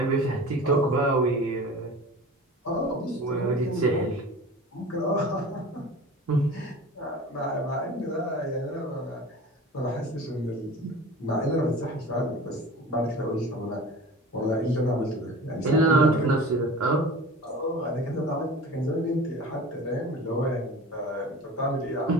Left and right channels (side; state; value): both; normal; correlation 0.37